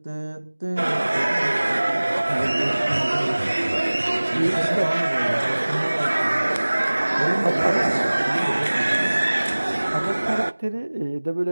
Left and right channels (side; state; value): both; inverted; correlation -1.00